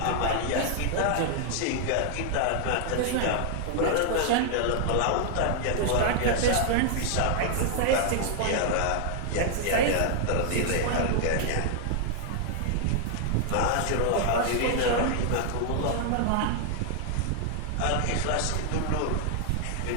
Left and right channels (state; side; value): different; both; correlation 0.00